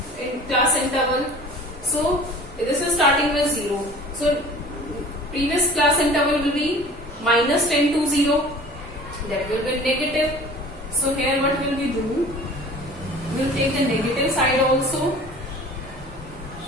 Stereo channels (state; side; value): normal; both; correlation 0.44